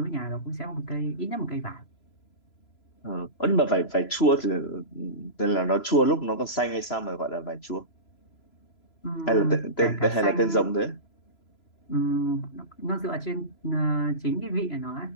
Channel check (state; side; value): late; right; 3.0 ms